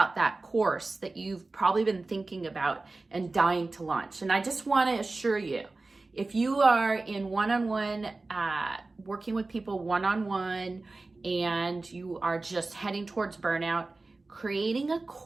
that course that you've probably been thinking about and dying to launch. And I just want to assure you, if you are in one-on-one, working with people one-on-one, and you are just heading towards burnout, creating a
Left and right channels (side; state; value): left; quieter; 3.4 dB